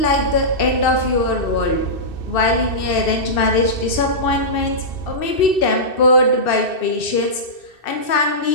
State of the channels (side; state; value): right; late; 2.6 ms